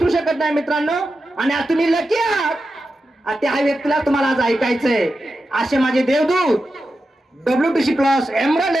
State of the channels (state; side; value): normal; both; correlation 0.90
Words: शकत नाही मित्रांनो. आणि आज तुम्ही लकी आहात, त्या व्यक्तीला तुम्हाला आज ऐकायचंय. असे माझे देवदूत, WTC+ emerald